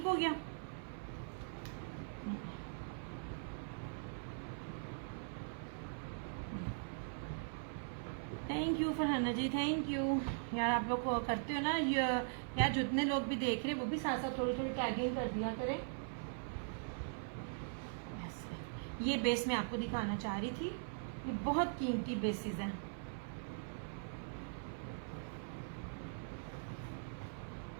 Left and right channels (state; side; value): silent; left; 50 dB below the other